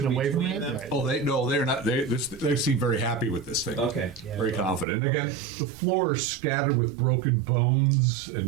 away from between it? them? Right. Oh, they're not. They seem very happy with this thing. Okay. Yeah. Very confident. And again, the floor is scattered with broken bones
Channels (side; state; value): left; drops out; at 4.9 s